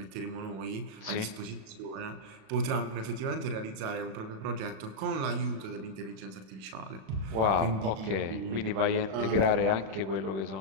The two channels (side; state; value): left; late; 37 ms